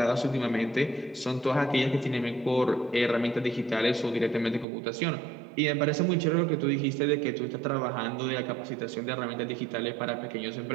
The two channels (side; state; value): left; drops out; at 4.7 s